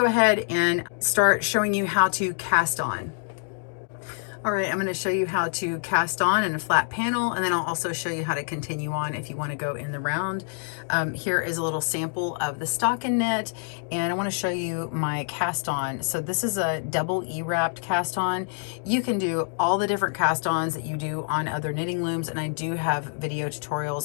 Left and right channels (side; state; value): right; silent; 56 dB below the other